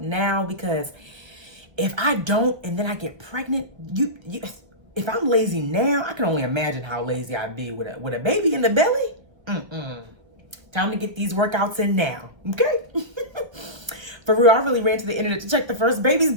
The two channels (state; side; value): late; left; 1.1 ms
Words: because if I don't and then I get pregnant, if I'm lazy now, I can only imagine how lazy I'd be with a baby in the belly. Time to get these workouts in now, okay? For real, I really ran to the internet to check the first baby's